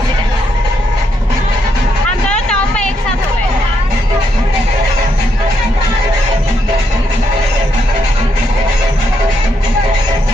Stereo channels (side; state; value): both; normal; correlation 0.77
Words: हम दोनों टॉप में एक साथ हो गए।